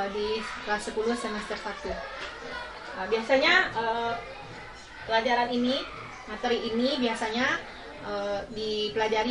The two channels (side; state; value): both; identical; correlation 1.00